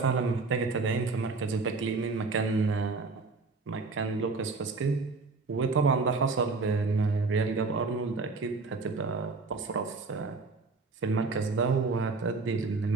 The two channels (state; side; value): quieter; left; 4.0 dB